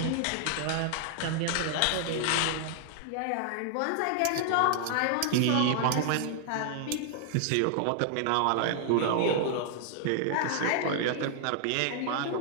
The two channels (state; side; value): different; both; correlation 0.00